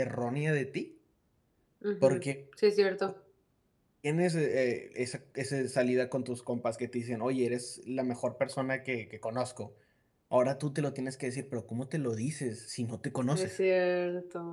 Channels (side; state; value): both; identical; correlation 1.00